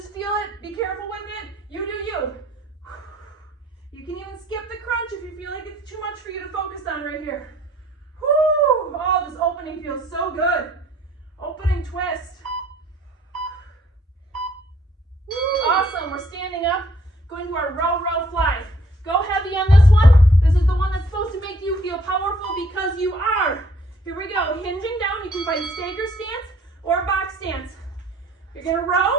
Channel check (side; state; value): both; normal; correlation 0.61